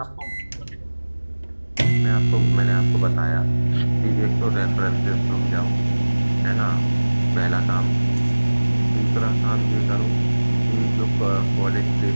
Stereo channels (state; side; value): inverted; both; correlation -1.00